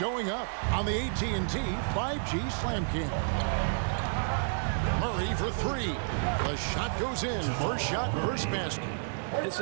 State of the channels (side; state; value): left; silent; digital silence